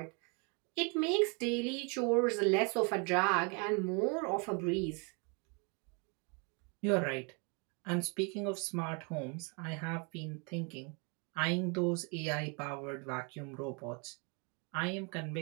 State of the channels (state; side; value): quieter; left; 33.9 dB